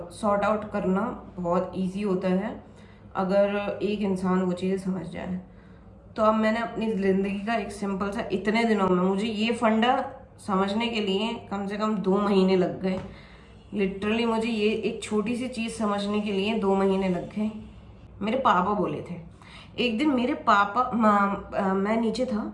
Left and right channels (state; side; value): identical; both; correlation 1.00